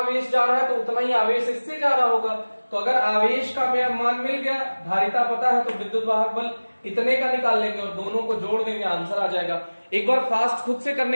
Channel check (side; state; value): both; inverted; correlation -1.00